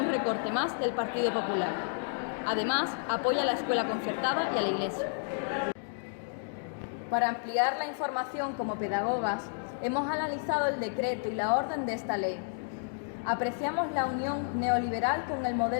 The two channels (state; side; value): silent; right; digital silence